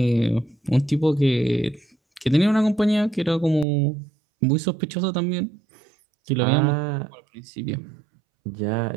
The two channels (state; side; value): drops out; left; at 3.7 s